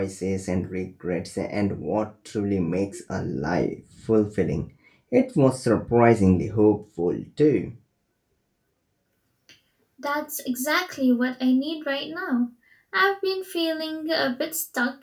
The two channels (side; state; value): both; identical; correlation 1.00